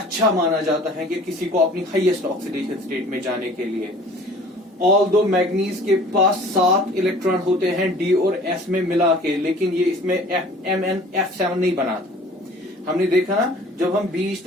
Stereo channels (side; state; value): both; normal; correlation 0.48